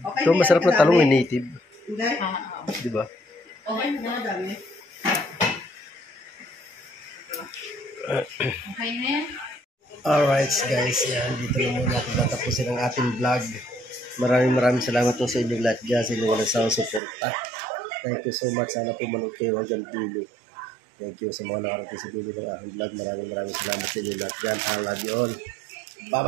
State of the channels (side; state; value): left; drops out; at 17.0 s